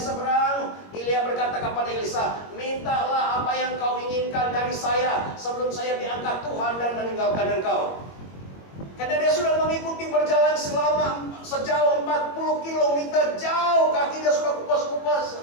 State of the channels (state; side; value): late; right; 21 ms